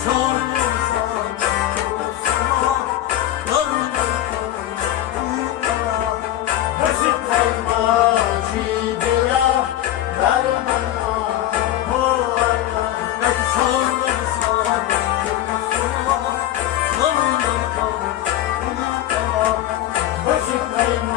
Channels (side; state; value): right; quieter; 13.3 dB